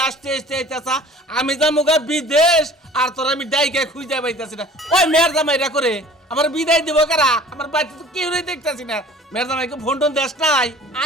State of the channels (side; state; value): both; normal; correlation 0.47